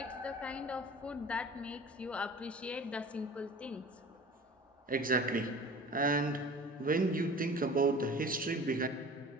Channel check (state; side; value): normal; both; correlation 0.41